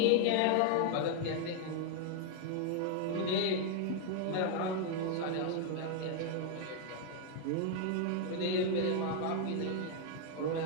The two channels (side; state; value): both; different; correlation 0.00